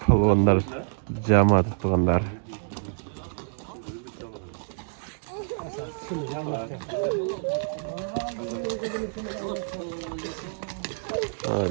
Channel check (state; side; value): silent; left; digital silence